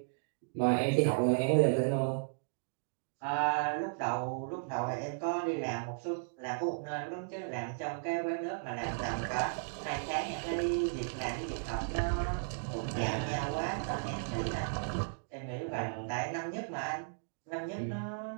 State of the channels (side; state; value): left; silent; digital silence